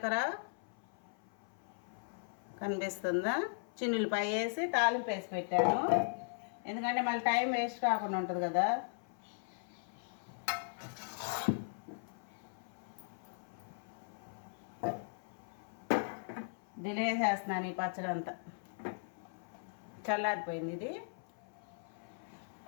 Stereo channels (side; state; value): right; silent; 52 dB below the other